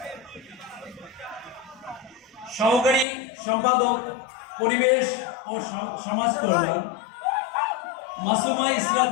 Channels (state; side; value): drops out; right; at 3.1 s